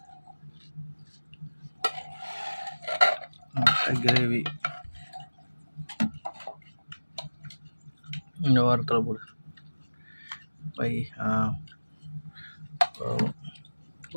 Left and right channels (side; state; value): both; inverted; correlation -1.00